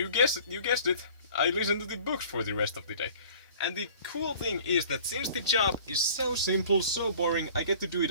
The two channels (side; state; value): both; inverted; correlation -0.48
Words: guessed it, I listen to the books for the rest of the day. And the cool thing is that since the job is so simple, so boring, I get to do